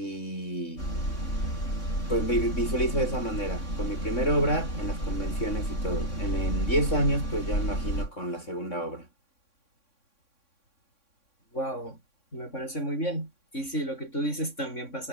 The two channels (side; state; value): right; late; 3.6 ms